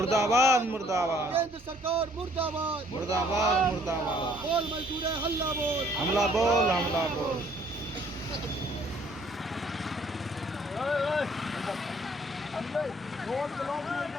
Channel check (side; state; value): both; normal; correlation 0.61